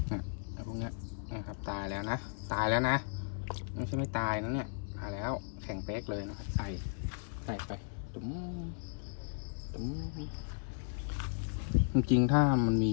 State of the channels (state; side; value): silent; right; 54 dB below the other